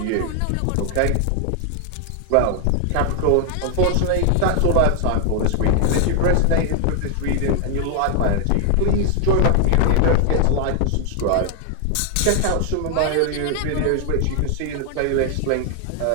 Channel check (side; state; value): both; different; correlation 0.00